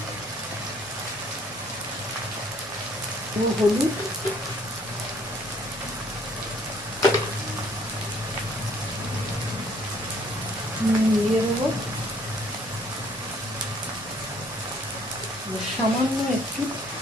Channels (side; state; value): both; normal; correlation 0.61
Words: হলুদ, দিয়ে দেবো সামান্য একটু